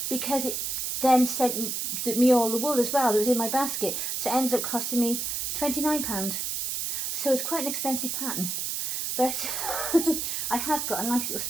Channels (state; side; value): noise; right; hiss, 2 dB below the sound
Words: because it then sent me all the wool as well that was in my basket, so it ends up costing me £29. So it's quite an expensive pattern. But I have got a nice little